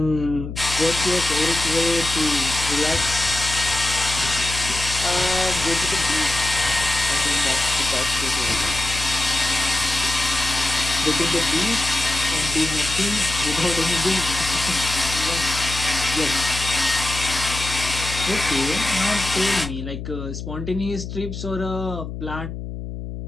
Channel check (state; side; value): noise; left; hum, 8 dB below the sound